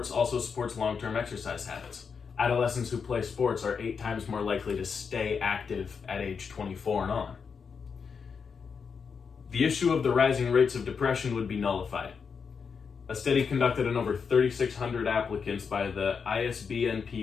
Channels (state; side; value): quieter; right; 6.0 dB